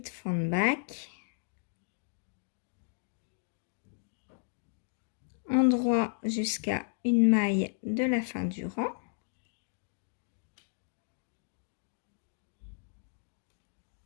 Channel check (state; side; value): silent; right; digital silence